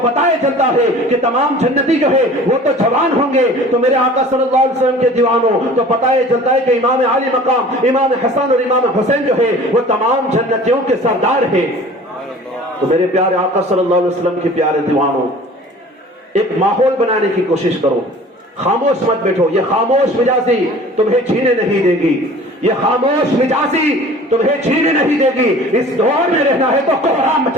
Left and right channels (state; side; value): normal; both; correlation 0.45